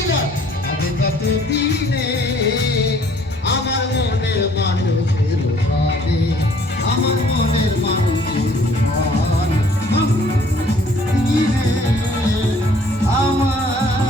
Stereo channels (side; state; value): both; normal; correlation 0.59